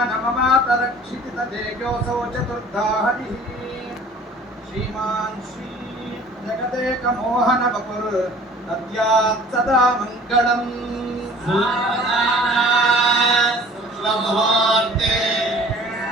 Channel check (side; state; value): both; normal; correlation 0.48